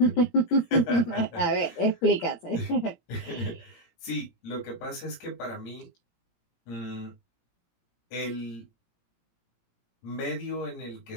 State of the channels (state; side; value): late; right; 17 ms